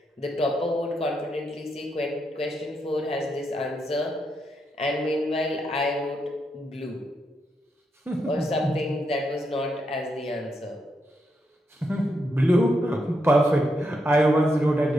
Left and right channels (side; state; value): both; normal; correlation 0.82